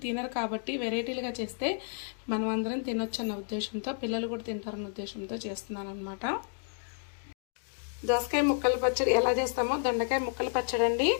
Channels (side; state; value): right; silent; 57 dB below the other